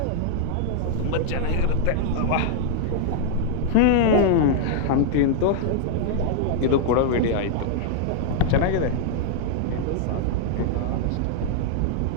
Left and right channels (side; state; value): both; different; correlation 0.00